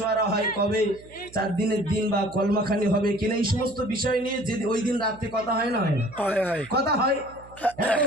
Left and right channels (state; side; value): noise; right; hum, 22 dB below the sound